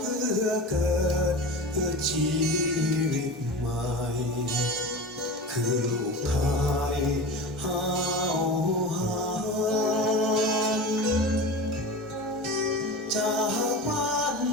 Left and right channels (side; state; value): both; normal; correlation 0.30